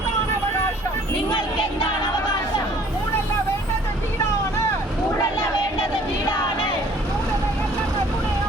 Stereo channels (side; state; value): both; normal; correlation 0.55